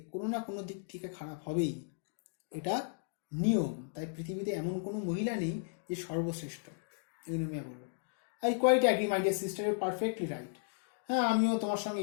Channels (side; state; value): right; silent; digital silence